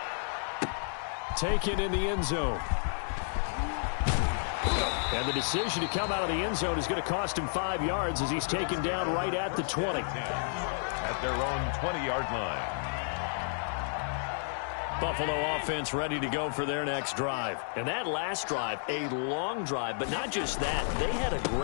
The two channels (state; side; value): silent; right; 56 dB below the other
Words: Taken in the end zone. And the decision to come out of the end zone is going to cost him 5 yards as he's taken down right at the 20. At their own 20-yard line. Buffalo offense ready to go for their next drive. And that last drive, a long drive, but not just that. They had a